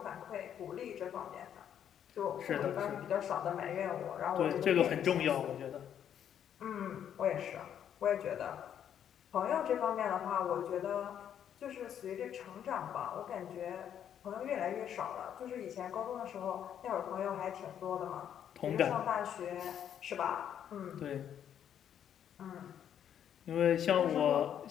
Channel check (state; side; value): quieter; right; 9.4 dB